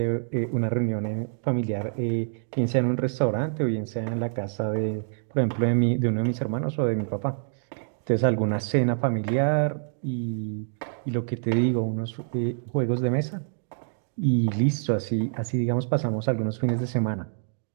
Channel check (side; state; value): left; silent; digital silence